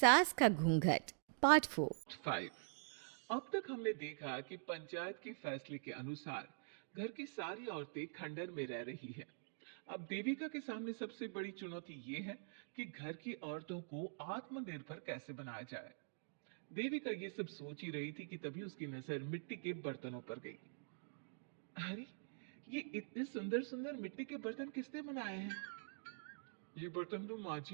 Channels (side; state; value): left; silent; digital silence